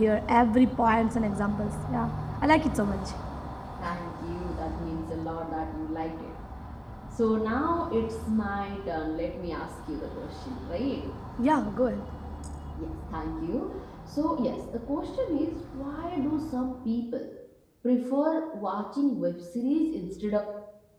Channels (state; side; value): identical; both; correlation 1.00